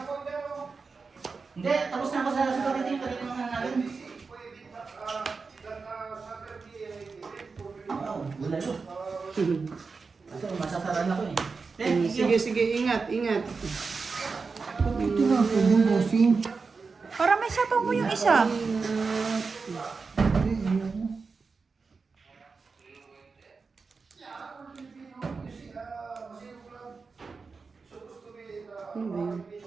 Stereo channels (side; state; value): left; quieter; 4.6 dB